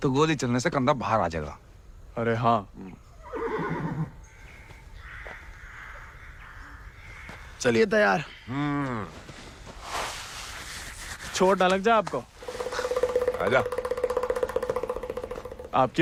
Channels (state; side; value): identical; both; correlation 1.00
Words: तो गोली चलने से कंधा बाहर आ जाएगा। अरे हाँ, चलिए तैयार। चोट ना लग जाए आपको। आजा।